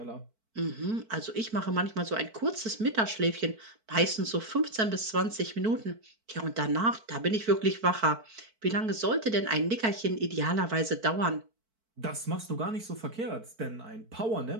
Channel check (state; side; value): late; left; 4.5 ms